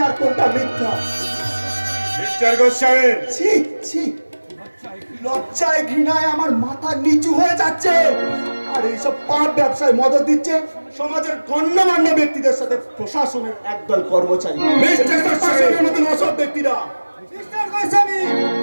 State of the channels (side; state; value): both; inverted; correlation -1.00